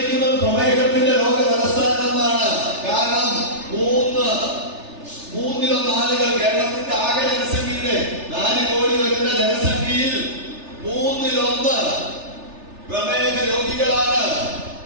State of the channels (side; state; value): left; late; 3.3 ms